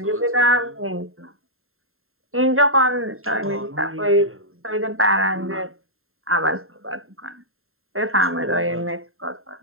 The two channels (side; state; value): left; late; 0.61 ms